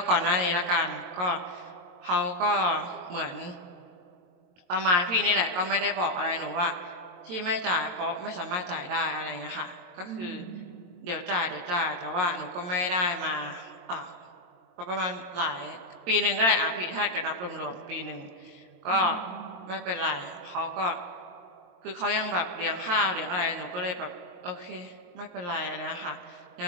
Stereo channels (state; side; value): late; left; 23 ms